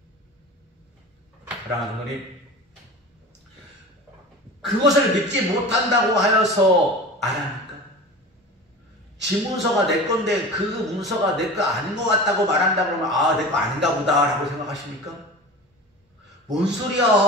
사랑하는 성도님, 그것을 믿지 못한다고 하여서 안 합니까? 지 문서가 내 건데 그 문서가 내 거 아닌 것 같다고 말한다 그러면 아, 내 거 아닌가 보다 라고 생각하십니까? 뭔 소리야?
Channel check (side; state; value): both; normal; correlation 0.34